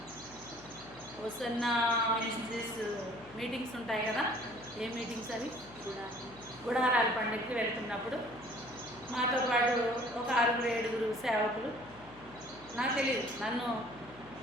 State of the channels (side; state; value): left; noise; hum, 22 dB below the sound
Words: హోసన్న మినిస్ట్రీస్ మీటింగ్స్ ఉంటాయి కదా, ఏ మీటింగ్స్ అవి? గుడారాల పండుగకి వెళ్తున్నప్పుడు మాతో పాటు ఒక 6-7 సేవకులు, నాకు తెలియదు, నన్ను